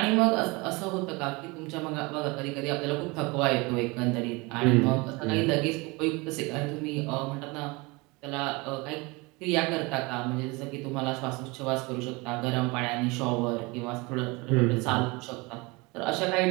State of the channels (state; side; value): quieter; left; 25.6 dB